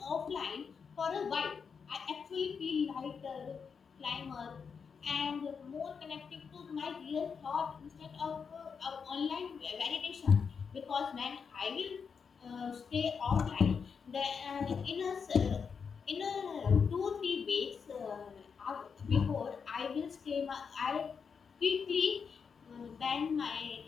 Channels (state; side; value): quieter; right; 6.0 dB